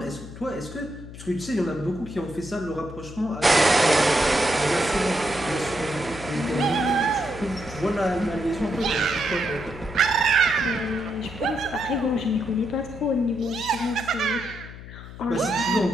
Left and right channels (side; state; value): left; noise; hum, 14 dB below the sound